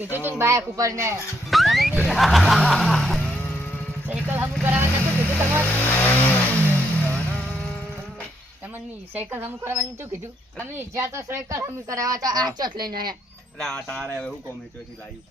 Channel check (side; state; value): both; normal; correlation 0.75